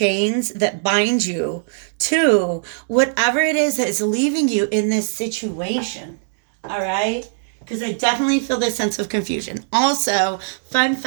that bind you to whatever it is that is leaving you in this situation, all right? Because I definitely feel this sense of confusion. Also, fun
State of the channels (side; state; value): left; silent; digital silence